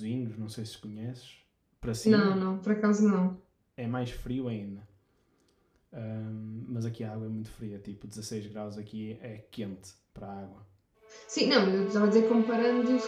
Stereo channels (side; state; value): both; identical; correlation 1.00